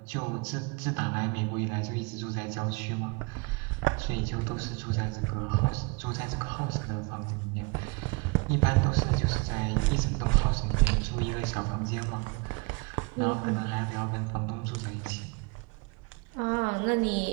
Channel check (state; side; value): quieter; left; 28.0 dB